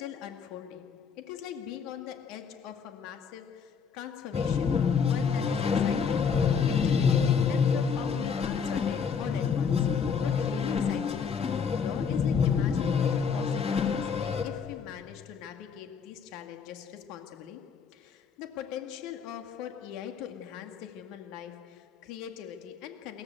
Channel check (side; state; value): right; quieter; 6.3 dB